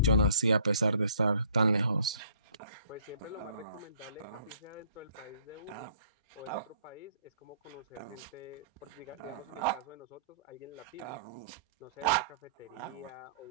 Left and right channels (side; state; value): both; inverted; correlation -0.58